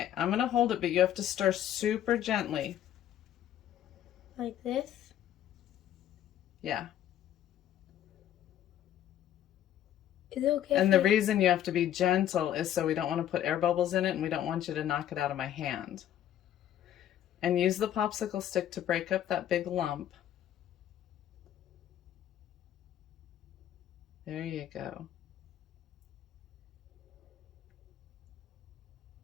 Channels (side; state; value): right; quieter; 11.2 dB